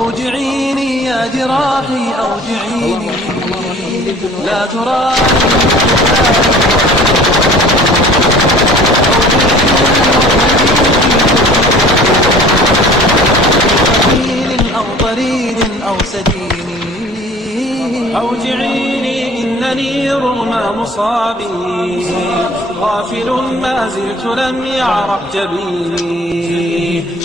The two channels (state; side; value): normal; both; correlation 0.47